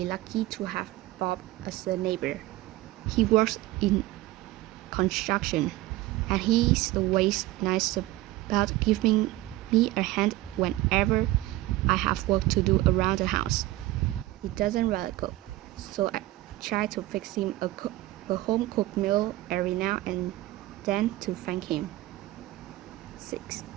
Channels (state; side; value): quieter; left; 17.3 dB